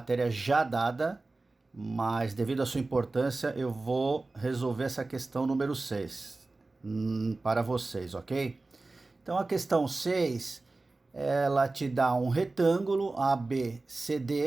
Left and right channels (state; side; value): quieter; left; 3.3 dB